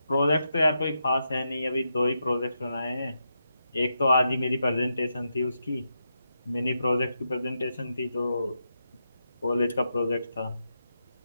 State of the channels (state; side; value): inverted; both; correlation -0.85